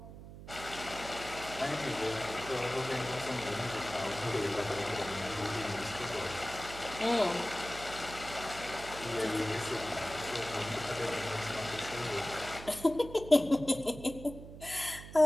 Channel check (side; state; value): right; noise; hum, 13 dB below the sound